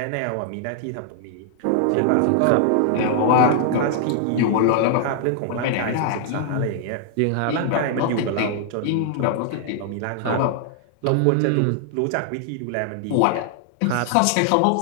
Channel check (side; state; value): both; different; correlation -0.01